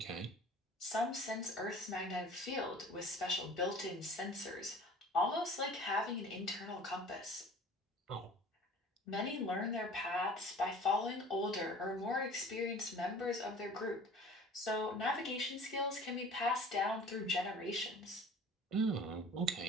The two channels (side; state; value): both; normal; correlation 0.45